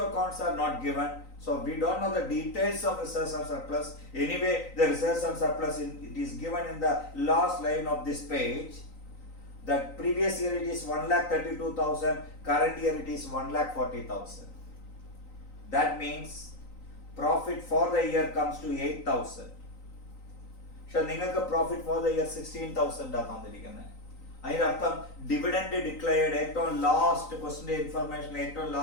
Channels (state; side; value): late; right; 3.9 ms